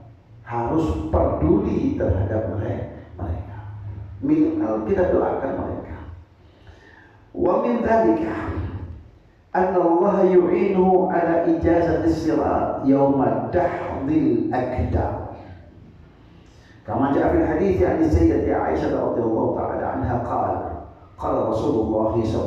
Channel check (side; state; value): both; identical; correlation 1.00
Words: harus peduli terhadap mereka. Minimal kita doakan mereka. Wa min dzalika anna Allah yu'inuhu ala ijazati sirat yawma dahdil akdam. Kama jaa fil hadits an Sayyidati Aisyah radhiyallahu ta'ala anha qala Rasulullah